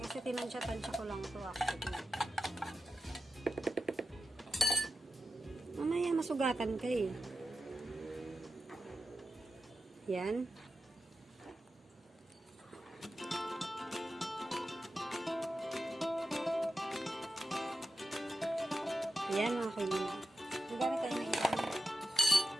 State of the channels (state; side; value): normal; both; correlation 0.91